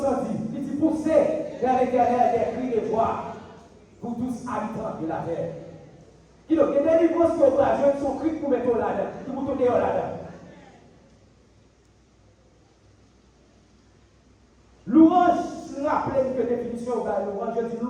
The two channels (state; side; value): identical; both; correlation 1.00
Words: dire. Il dit pousser vers l'éternel des cris de joie pour tous habitants de la terre. Il y a des délivrance qui ont son cri pour mettre là-dedans, pour tourner là-dedans. Louange, je rappelle que définition de louange, je dis